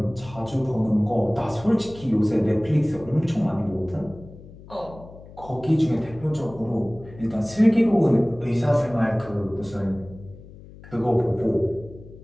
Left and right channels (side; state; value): left; noise; hum, 19 dB below the sound